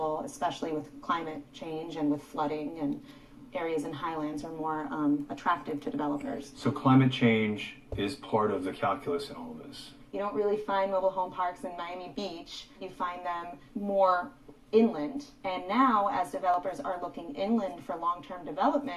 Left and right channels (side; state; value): both; identical; correlation 1.00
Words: especially with climate change and with flooding, and areas in highlands are more attractive to developers. So climate change is part of the calculus in all of this. You don't really find mobile home parks in Miami Beach. You find them more inland. And now, as developers are looking inland for long-term